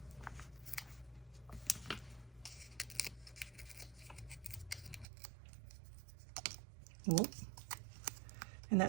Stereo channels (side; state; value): left; drops out; at 5.1 s